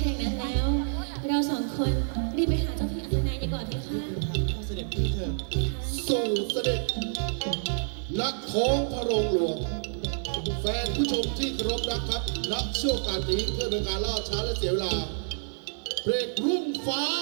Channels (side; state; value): left; silent; digital silence